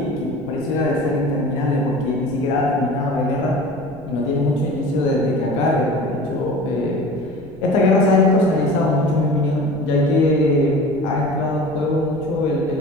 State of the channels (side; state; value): left; noise; rumble, 23 dB below the sound